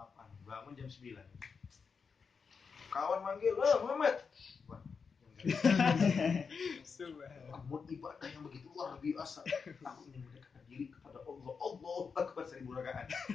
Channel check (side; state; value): right; quieter; 5.5 dB